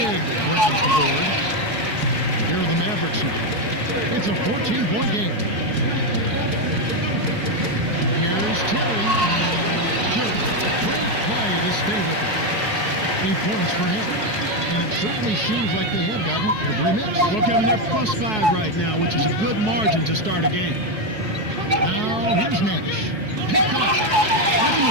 grabs the board. Here are the Mavericks now. It's a 14-point game. Here's Terry. Great play to stay with it. 8 points for him. And it certainly seems like they have gotten every miss. Well, Kevin, they're +5 right now, which is a good margin to start a game. Now, here's Nash. Picked off. That's a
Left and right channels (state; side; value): late; left; 4.7 ms